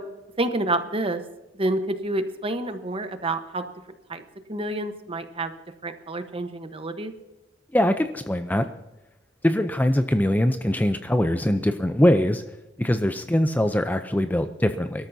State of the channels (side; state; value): both; normal; correlation 0.83